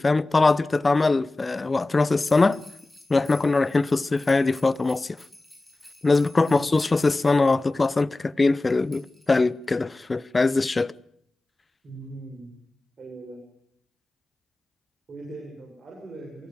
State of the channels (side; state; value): right; quieter; 3.0 dB